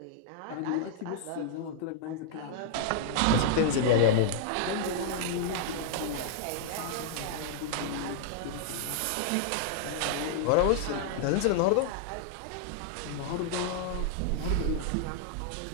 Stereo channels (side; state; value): both; different; correlation -0.01